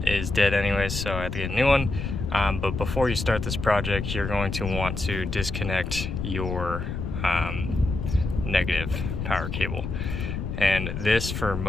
is dead anyways, so I have to get a new one. But before you start this project, you're going to want to disconnect your negative power cable, and this for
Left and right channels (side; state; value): left; noise; rumble, 4 dB below the sound